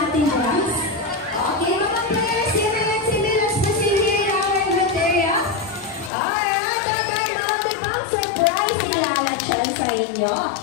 box. Okay, mga players, si Ryan, si Milos, si Hira, our Katea. Alright, ang pang surprise si Lala Chan sa inyo.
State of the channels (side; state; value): right; drops out; at 6.1 s